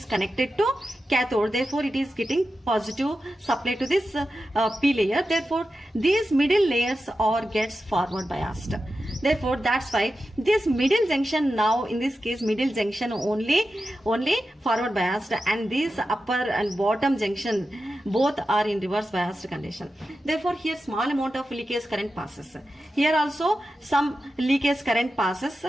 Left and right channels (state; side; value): normal; both; correlation 0.91